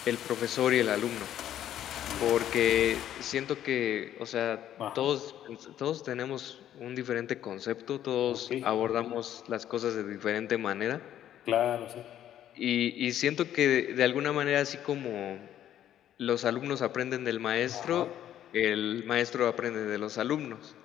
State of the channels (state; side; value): quieter; right; 11.3 dB